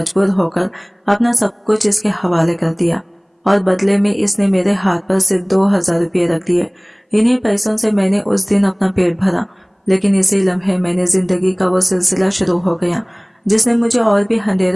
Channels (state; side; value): identical; both; correlation 1.00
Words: होकर अपना सब कुछ इसके हवाले कर दिया और बदले में इसने मेरे हाथ पर सिर्फ 2000 रुपये रख दिए। इन्हीं पैसों से मैंने उस दिन अपना पेट भरा, लेकिन इसी लम्हे मैंने जिंदगी का वो सिलसिला शुरू हो गया जिसने मुझे और भी